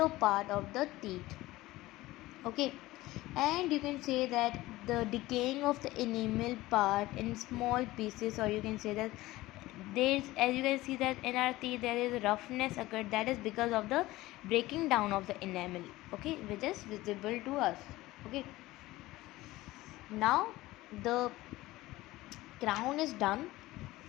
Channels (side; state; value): right; quieter; 18.1 dB